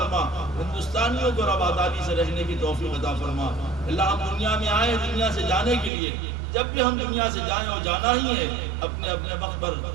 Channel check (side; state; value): left; drops out; at 5.9 s